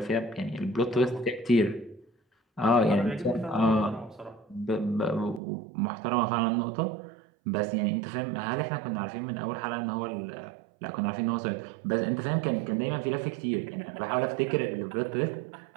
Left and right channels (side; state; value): left; drops out; at 5.4 s